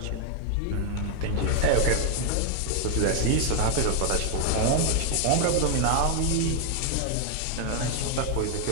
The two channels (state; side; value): different; both; correlation 0.00